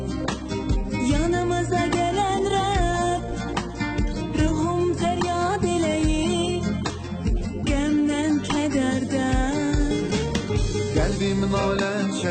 yanımıza gelen Rab, ruhum feryat eleyip gemden kederden. Kalbim nalə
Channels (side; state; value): both; identical; correlation 1.00